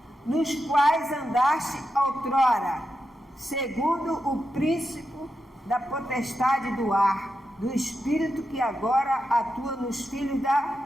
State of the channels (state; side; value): normal; both; correlation 0.87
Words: nos quais andaste outrora, segundo o príncipe da potestade do ar, do espírito que agora atua nos filhos